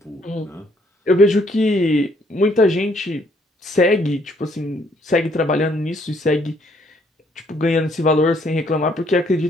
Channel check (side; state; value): both; normal; correlation 0.67